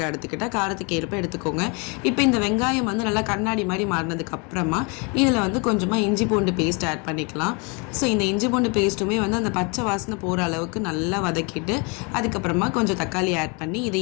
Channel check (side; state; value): right; quieter; 31.7 dB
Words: எடுத்துக்கிட்டால் காரத்துக்கு ஏற்ப எடுத்துக்கோங்க. இப்போ இந்த வெங்காயம் வந்து நல்லா கண்ணாடி மாதிரி மாறினதுக்கப்புறமா இதில் வந்து கொஞ்சமாக இஞ்சி பூண்டு பேஸ்ட் ஆட் பண்ணிக்கலாம். ஸோ இந்த இஞ்சி பூண்டு பேஸ்ட்டுமே வந்து அந்த பச்சை வாசனை போகிற அளவுக்கு நல்லா வதக்கிட்டு அதுக்கப்புறமா கொஞ்சம் தக்காளி ஆட் பண்ணி